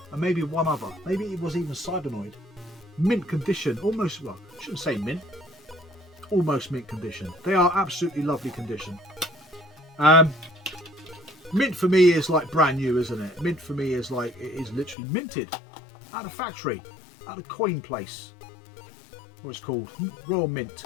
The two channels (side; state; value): right; drops out; at 15.0 s